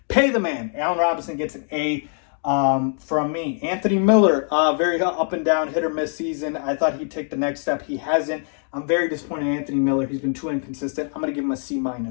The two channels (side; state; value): right; silent; 55 dB below the other